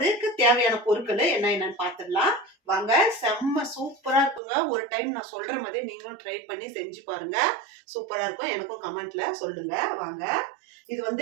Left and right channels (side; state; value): left; drops out; at 4.4 s